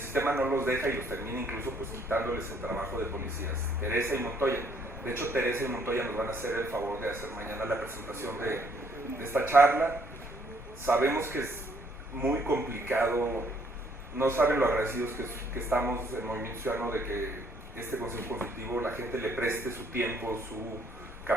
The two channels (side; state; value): both; normal; correlation 0.66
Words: sistema no los deja y los termina incluso pues quitándoles el trabajo de policías. Teresa y Montoya. De hecho, Teresa y Montoya nos van a hacer el favor de hacer mañana la presentación de esta charla. Sabemos que es muy complicado, no saben lo agradecidos que estamos en Movimiento Ciudadano de que este Consejo Consultivo la gente le preste su tiempo, su